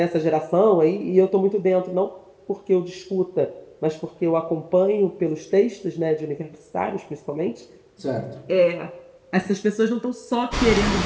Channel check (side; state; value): both; identical; correlation 1.00